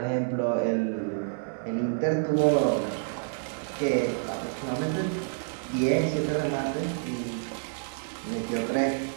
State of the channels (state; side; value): silent; left; digital silence